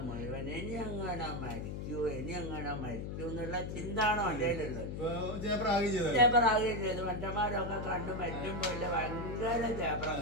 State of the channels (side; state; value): left; noise; hum, 5 dB below the sound